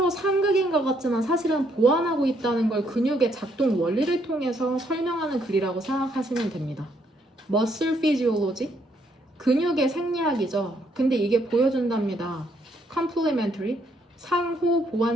상극인 것 같지만 사실은 보완하고 있다는 걸 근육의 작동 원리를 통해서 설명하는 글이라고 생각하시면 됩니다. muscle physiology, 근육의 생리학이죠. 근데 이게 보여준답니다. complementary, 상호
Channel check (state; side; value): normal; both; correlation 0.71